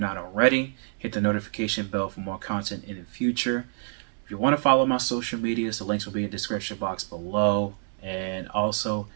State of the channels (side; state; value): left; silent; 60 dB below the other